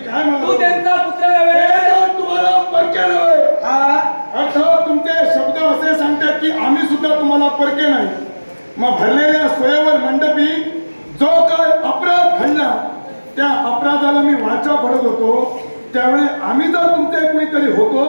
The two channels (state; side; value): inverted; both; correlation -1.00